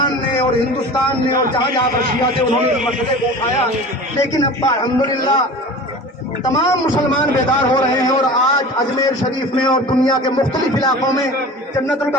نے اور ہندوستان نے اور جہاں جہاں پر شیعہ تھے انہوں نے اس مسئلے کو اٹھایا، لیکن اب الحمدللہ تمام مسلمان بیدار ہو رہے ہیں، اور آج اجمیر شریف میں اور دنیا کے مختلف علاقوں میں جنت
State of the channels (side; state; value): both; normal; correlation 0.37